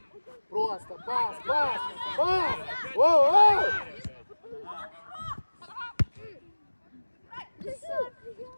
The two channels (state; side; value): inverted; both; correlation -1.00